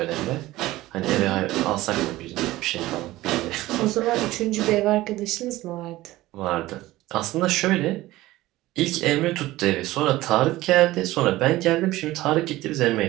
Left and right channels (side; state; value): left; quieter; 17.3 dB